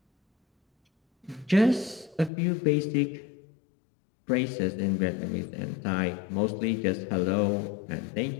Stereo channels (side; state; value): right; drops out; at 2.3 s